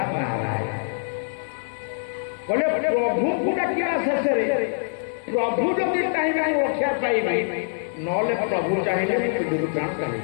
ନାରାୟଣ। କହିଲେ ପ୍ରଭୁଙ୍କୁ ଡାକିବା ଶେଷରେ ପ୍ରଭୁ ଯଦି ଚାହିଁବେ ମୁଁ ରକ୍ଷା ପାଇବି, ନହେଲେ ପ୍ରଭୁ ଚାହିଁଲେ ପିଣ୍ଡରୁ ପ୍ରାଣ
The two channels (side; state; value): right; silent; 62 dB below the other